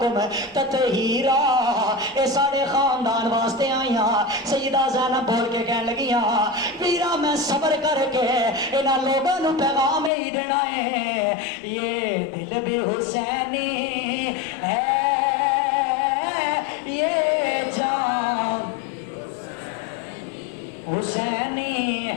تطہیرا. اے ساڈے خاندان واسطے آئیاں. سیدہ زینب بول کے کہنے لگیاں ویرا میں صبر کر کے انہاں لوگاں نوں پیغام ہی دینا ہے, یہ دل بھی حسینی ہے, یہ جان حسینی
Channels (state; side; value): drops out; right; at 10.1 s